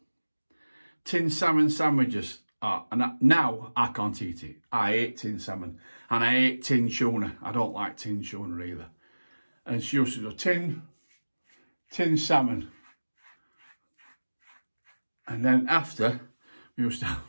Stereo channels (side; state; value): both; inverted; correlation -1.00